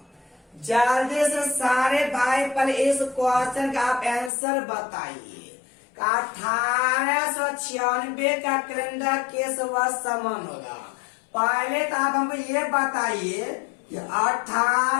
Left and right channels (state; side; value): drops out; right; at 4.3 s